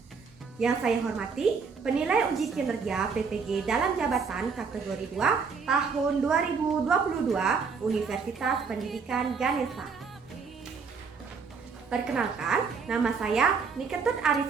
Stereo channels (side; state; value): left; quieter; 5.4 dB